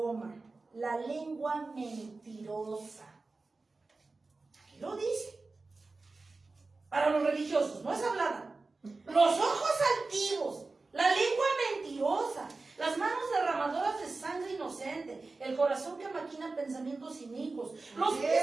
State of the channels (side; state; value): left; quieter; 3.6 dB